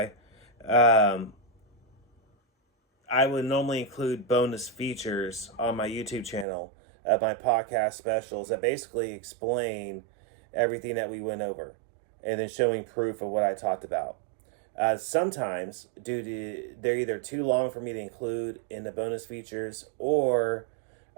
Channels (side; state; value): left; drops out; at 6.5 s